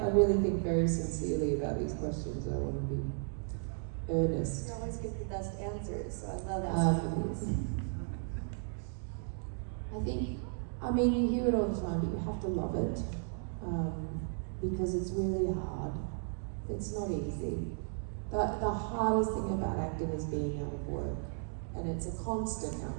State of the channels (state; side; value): silent; left; 55 dB below the other